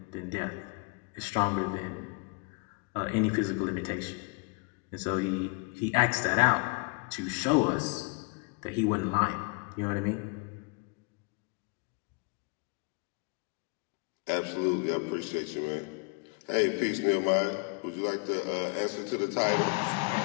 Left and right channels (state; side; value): quieter; right; 33.3 dB